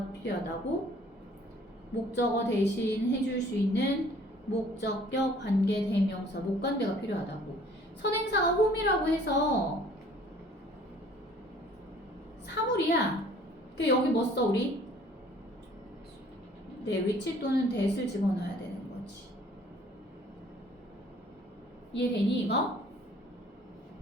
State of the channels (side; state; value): both; normal; correlation 0.55